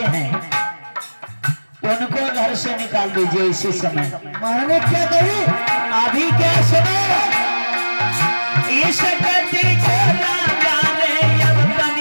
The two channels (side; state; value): both; inverted; correlation -1.00